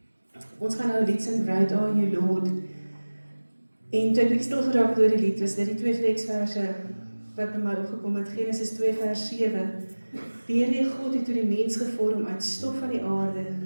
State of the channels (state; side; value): inverted; both; correlation -1.00